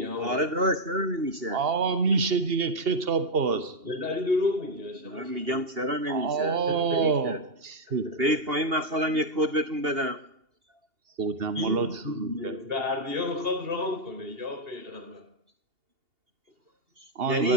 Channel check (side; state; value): left; late; 2.8 ms